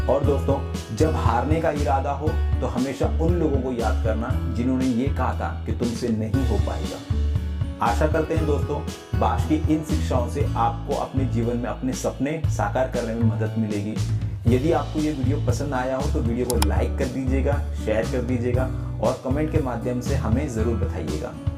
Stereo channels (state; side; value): identical; both; correlation 1.00